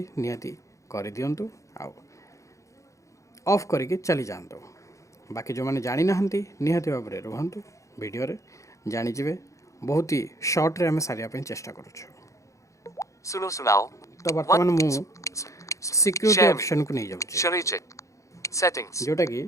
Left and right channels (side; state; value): right; late; 0.15 ms